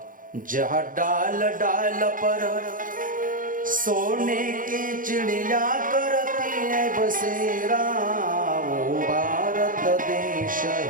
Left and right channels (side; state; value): left; late; 0.39 ms